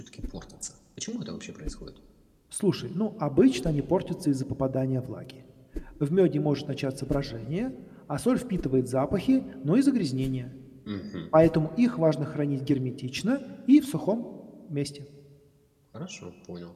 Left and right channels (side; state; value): both; identical; correlation 1.00